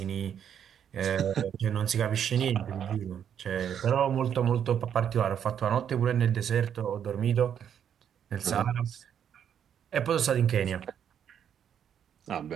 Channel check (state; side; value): quieter; left; 8.8 dB